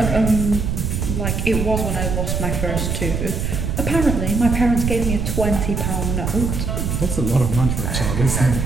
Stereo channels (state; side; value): noise; right; rumble, 1 dB below the sound